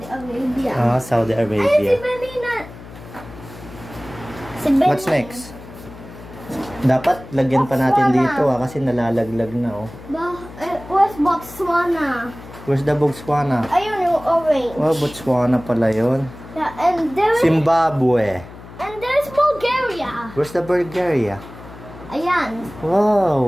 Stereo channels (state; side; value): noise; left; hum, 17 dB below the sound